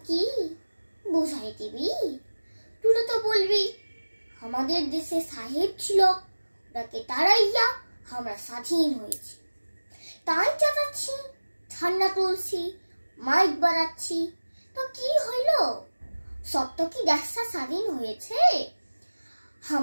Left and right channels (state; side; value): inverted; both; correlation -1.00